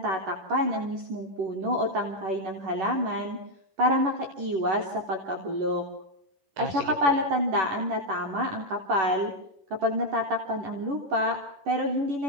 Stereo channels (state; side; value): late; left; 11 ms